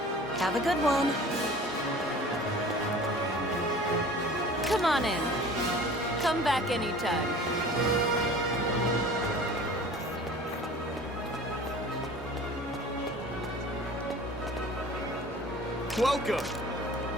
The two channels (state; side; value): normal; both; correlation 0.44